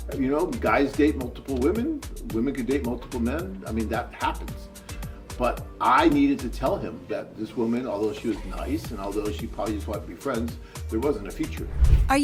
Guys date multiple women. Women can date multiple men. I mean, that happens. But I needed to tell him that this woman, although she was nice and although she probably just wanted to be friends, there wasn't a future. Are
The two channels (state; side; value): identical; both; correlation 1.00